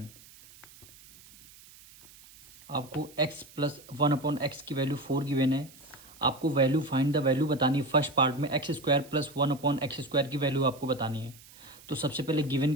आपको x प्लस 1/x की वैल्यू 4 गिवन है। आपको वैल्यू फाइंड द वैल्यू बतानी है। फर्स्ट पार्ट में x² प्लस 1/x² की वैल्यू आपको बतानी है। तो सबसे पहले गिवन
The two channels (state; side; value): noise; right; hiss, 22 dB below the sound